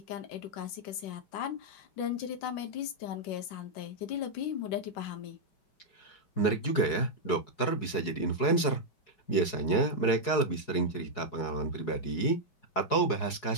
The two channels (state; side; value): late; right; 4.7 ms